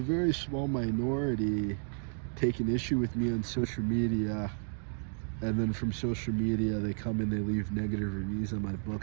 very small minority take an issue with me on social media, and then from social media they come and they leave negative reviews on my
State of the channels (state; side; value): silent; left; 56 dB below the other